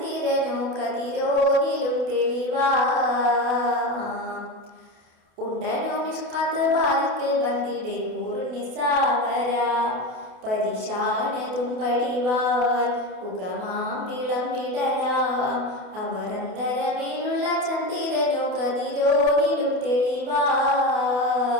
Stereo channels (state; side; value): late; left; 28 ms